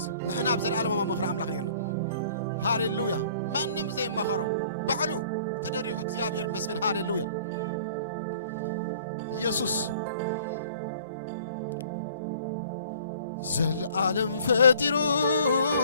نحن أبزل عالمه ومخر عمل خيرنا هاليلويا ما نم زي ما خرو بعلو تدريه እግዚአብሔር ይመስገን هاليلويا يسوع زل عالم فاترو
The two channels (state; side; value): inverted; both; correlation -0.53